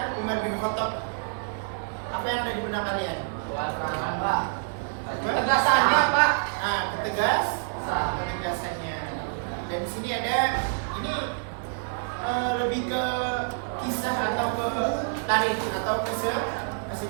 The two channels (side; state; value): left; silent; 60 dB below the other